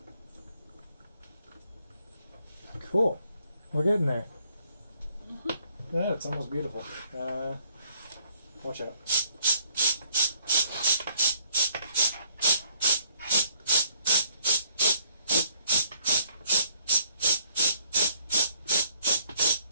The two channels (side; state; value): both; inverted; correlation -0.64